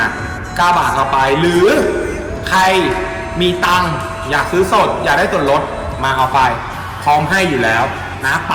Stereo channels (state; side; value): identical; both; correlation 1.00